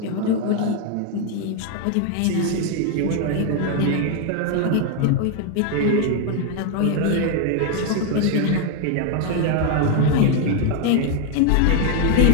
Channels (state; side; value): different; both; correlation 0.01